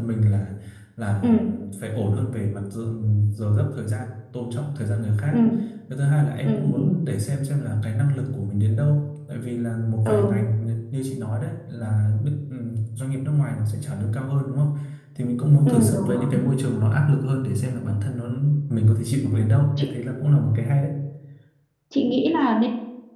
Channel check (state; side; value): identical; both; correlation 1.00